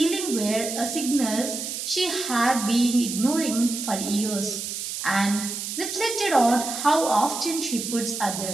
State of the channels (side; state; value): right; noise; hiss, 5 dB below the sound